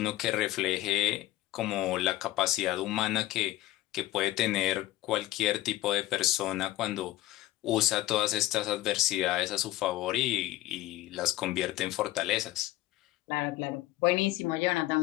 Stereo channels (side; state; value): right; quieter; 16.1 dB